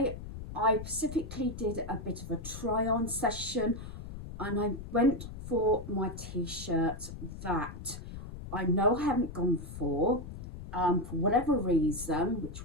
I specifically did a bit of a try-on session and I went for my t-shirts that I know I haven't gone for whatever reason, which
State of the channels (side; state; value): left; noise; rumble, 10 dB below the sound